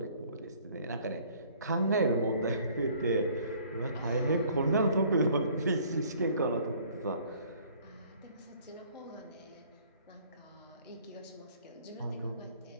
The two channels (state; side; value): inverted; both; correlation -0.57